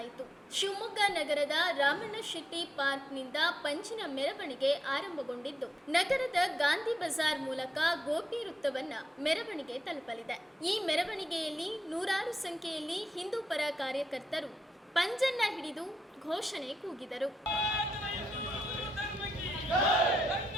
ಶಿವಮೊಗ್ಗ ನಗರದ ರಾಮಣ್ಣ ಶೆಟ್ಟಿ ಪಾರ್ಕ್ನಿಂದ ಪಂಜಿನ ಮೆರವಣಿಗೆ ಆರಂಭಗೊಂಡಿದ್ದು, ನಗರದ ಗಾಂಧಿ ಬಜಾರ್ ಮೂಲಕ ಗೋಪಿ ವೃತ್ತವನ್ನ ಮೆರವಣಿಗೆ ತಲುಪಲಿದೆ. ಈ ಮೆರವಣಿಗೆಯಲ್ಲಿ ನೂರಾರು ಸಂಖ್ಯೆಯಲ್ಲಿ ಹಿಂದೂ ಪರ ಕಾರ್ಯಕರ್ತರು ಪಂಜನ್ನ ಹಿಡಿದು ಘೋಷಣೆ ಕೂಗಿದರು.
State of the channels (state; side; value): normal; both; correlation 0.85